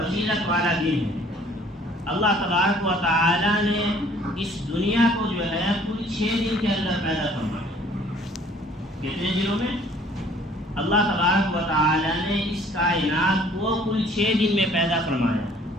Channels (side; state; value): both; normal; correlation 0.56